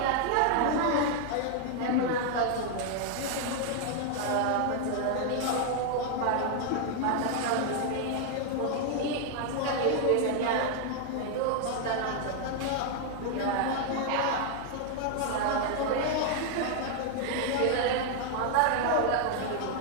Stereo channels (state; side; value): different; both; correlation 0.00